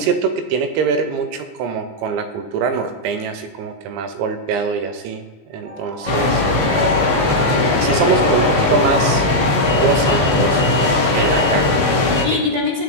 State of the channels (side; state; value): left; late; 20 ms